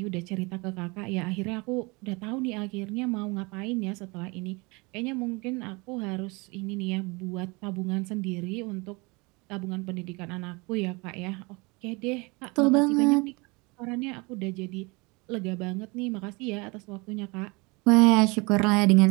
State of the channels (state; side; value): quieter; left; 27.0 dB